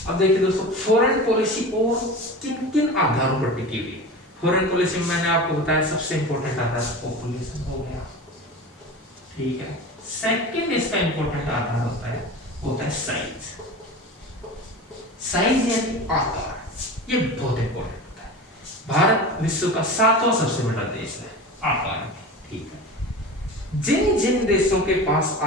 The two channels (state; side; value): normal; both; correlation 0.32